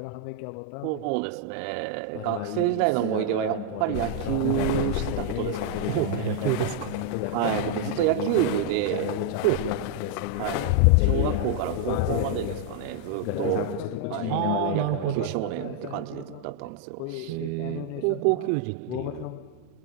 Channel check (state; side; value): different; both; correlation 0.00